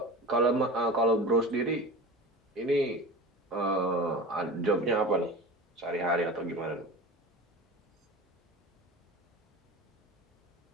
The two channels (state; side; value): normal; both; correlation 0.33